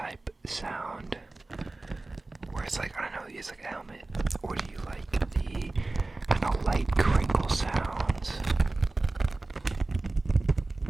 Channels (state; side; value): quieter; left; 3.1 dB